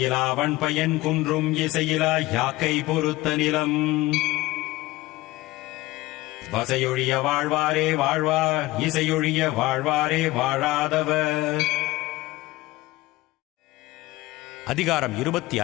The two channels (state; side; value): quieter; right; 19.1 dB